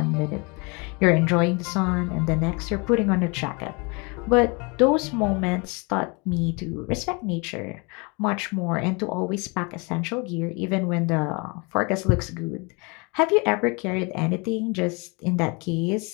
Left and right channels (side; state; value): right; quieter; 30.0 dB